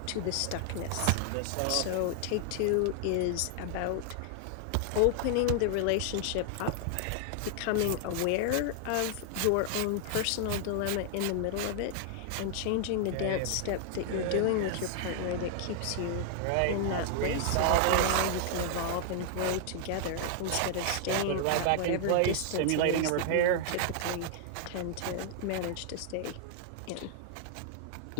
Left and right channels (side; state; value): both; different; correlation 0.00